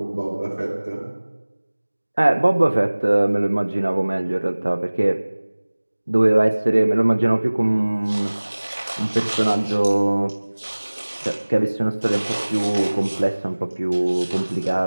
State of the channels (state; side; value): inverted; both; correlation -1.00